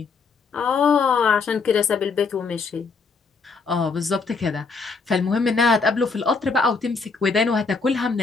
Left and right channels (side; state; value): right; quieter; 4.6 dB